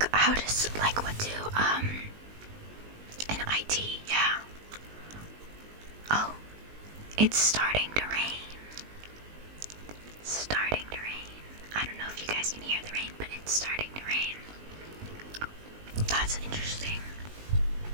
how does what do in IT, yeah. Oh, it's starting to rain. It's starting to rain. I don't know if you guys can hear the rain, but it's starting to rain. That's interesting.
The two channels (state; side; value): late; left; 19 ms